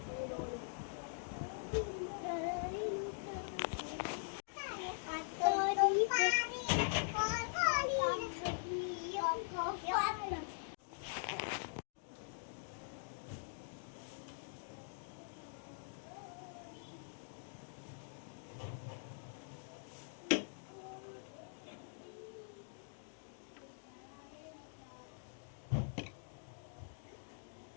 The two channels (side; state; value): right; silent; digital silence